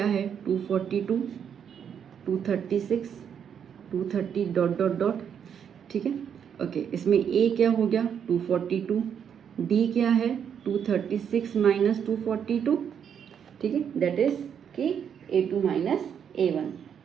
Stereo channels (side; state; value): left; quieter; 8.0 dB